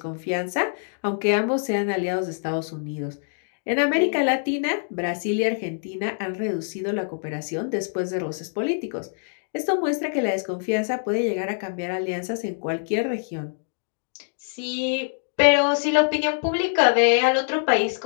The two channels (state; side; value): silent; right; digital silence